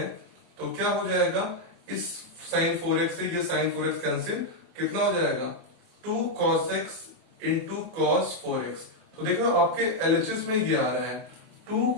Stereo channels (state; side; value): late; left; 24 ms